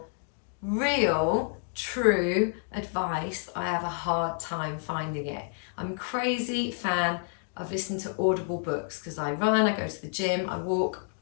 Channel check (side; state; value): right; silent; 58 dB below the other